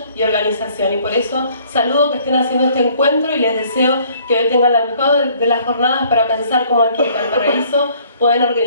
y organización. Y por eso saludo que estén haciendo este encuentro y les deseo que hoy tengan la mejor de las jornadas para pensar cómo aquí en Valparaíso pueden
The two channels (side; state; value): both; inverted; correlation -0.59